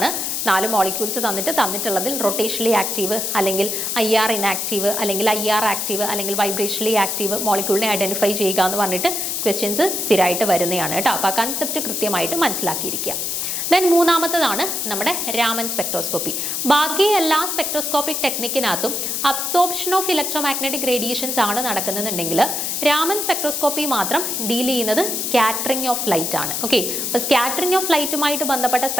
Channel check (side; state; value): left; noise; hiss, 1 dB below the sound